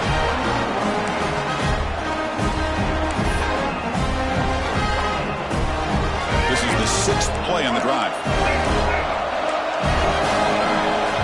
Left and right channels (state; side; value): identical; both; correlation 1.00